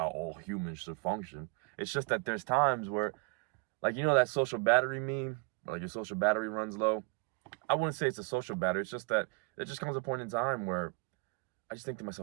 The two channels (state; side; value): quieter; left; 32.3 dB